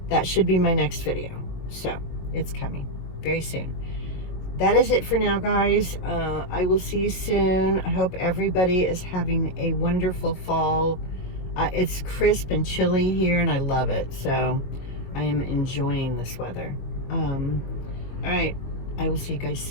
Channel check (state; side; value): late; right; 22 ms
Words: that should be my next video, so it's coming very soon. That is it for now, guys. I will see you soon. I hope everybody is having a wonderful fall. It's crisp and chilly here, and I love it. So I am enjoying this weather. All right. I will see you guys